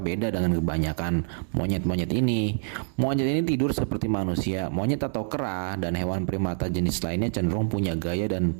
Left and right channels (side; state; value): left; silent; digital silence